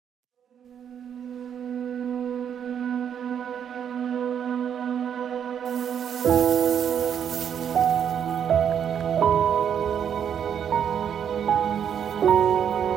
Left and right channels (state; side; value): quieter; left; 8.5 dB